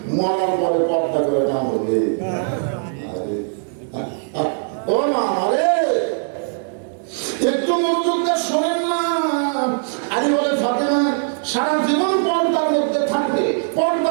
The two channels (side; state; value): left; silent; digital silence